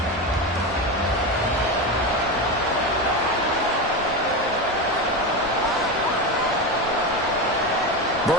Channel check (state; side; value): normal; both; correlation 0.18